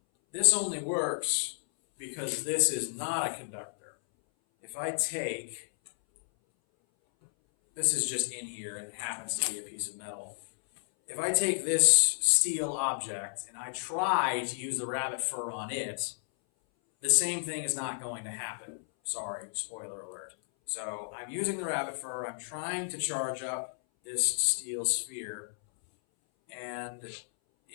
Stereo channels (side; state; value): right; silent; 56 dB below the other